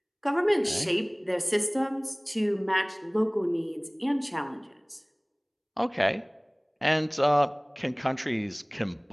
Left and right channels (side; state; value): both; identical; correlation 1.00